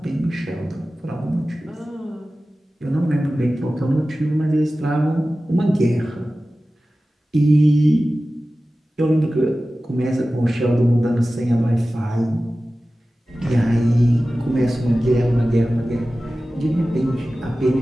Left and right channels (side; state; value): both; normal; correlation 0.96